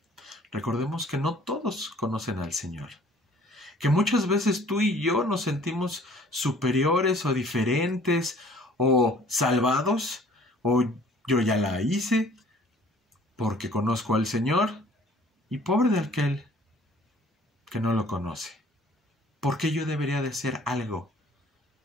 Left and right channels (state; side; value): normal; both; correlation 0.54